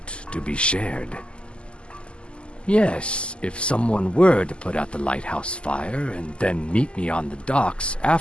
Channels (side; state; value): right; late; 0.053 ms